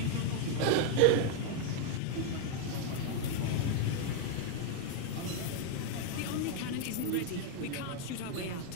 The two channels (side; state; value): both; different; correlation 0.00